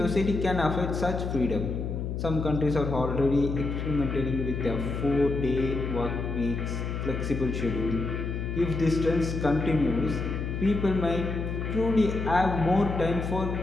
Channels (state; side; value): noise; left; hum, 3 dB below the sound